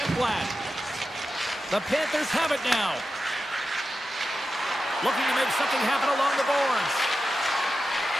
Ekblad. The Panthers have it now. Looking to make something happen along the boards.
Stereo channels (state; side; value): normal; both; correlation 0.91